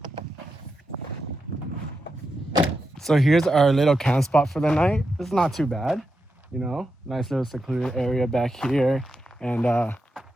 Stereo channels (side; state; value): both; normal; correlation 0.87